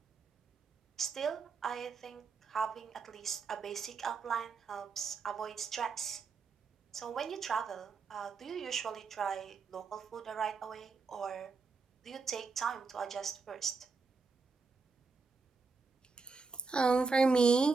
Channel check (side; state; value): left; quieter; 4.6 dB